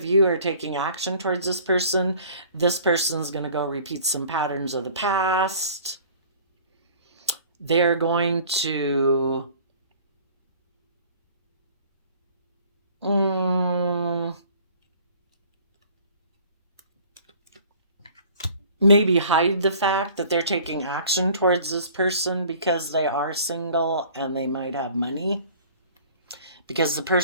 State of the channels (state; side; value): inverted; both; correlation -0.50